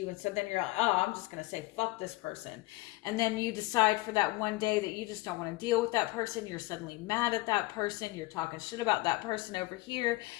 And so then you're like, oh, I'm just going to say, fuck this person. And then you decide for that one day that you just don't want to deal with that person. You're suddenly mad at that person. You're talking shit about that person over here.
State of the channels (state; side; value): quieter; right; 20.8 dB